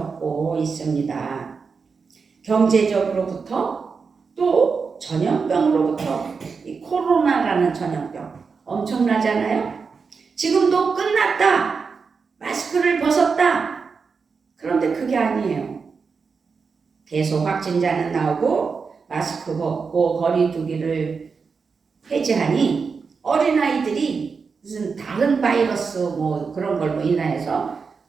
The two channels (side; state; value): left; quieter; 5.2 dB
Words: 있습니다. 경제적으로부터 또 전염병으로부터, 이 코로나라는 전염병 엄청나잖아요. 지금도 끝났다, 마스크를 벗었다, 그런데 그게 아니에요. 계속 확진자는 나오고 마스크 벗고 거리 두기를 폐지하니 어린아이들이 무슨 다른 바이러스 뭐 그런 걸로 인하여서